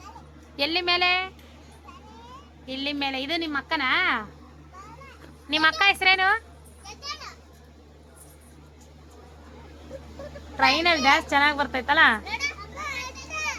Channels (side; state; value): both; identical; correlation 1.00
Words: ಎಲ್ಲಿ ಮೇಲೆ? ಇಲ್ಲಿ ಮೇಲೆ. ಇದು ನಿಮ್ಮ ಅಕ್ಕನಾ? ನಿಮ್ಮ ಅಕ್ಕ ಹೆಸರೇನು? ಟ್ರೈನಲ್ಲಿ ಡ್ಯಾನ್ಸ್ ಚೆನ್ನಾಗಿ ಬರ್ತೈತಲ್ಲ.